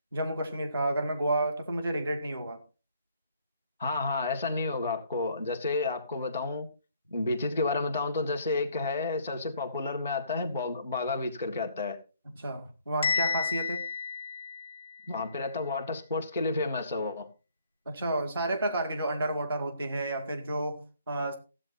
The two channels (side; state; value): both; inverted; correlation -0.64